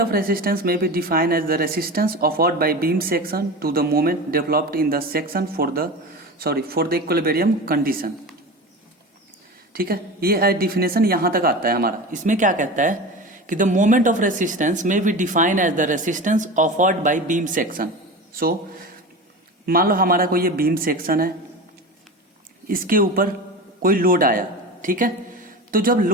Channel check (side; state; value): both; normal; correlation 0.29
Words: ऑफ रेसिस्टेंस में be define as the resistance offered by beam section to the moment developed in the section for the equilibrium condition. ठीक है, ये डिफिनेशन यहां तक आता है हमारा। इसमें क्या कहता है कि द मोमेंट ऑफ रेसिस्टेंस में be define as the resistance offered by beam section. So मान लो हमारा कोई ये बीम सेक्शन है, इसके ऊपर कोई लोड आया, ठीक है। तो जब